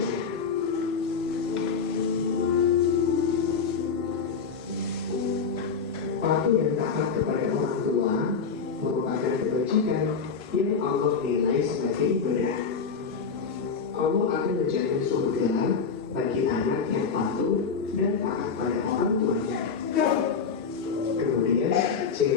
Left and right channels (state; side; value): quieter; right; 5.7 dB